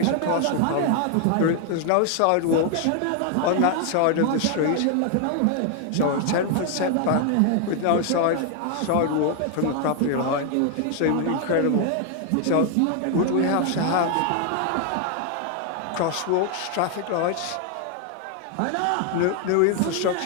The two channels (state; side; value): different; both; correlation 0.00